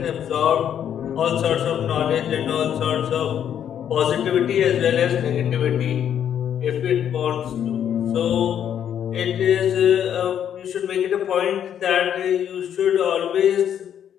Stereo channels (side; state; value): right; quieter; 9.4 dB